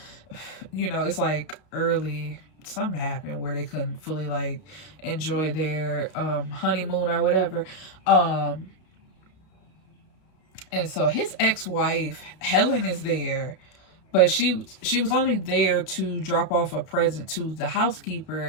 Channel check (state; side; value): late; right; 32 ms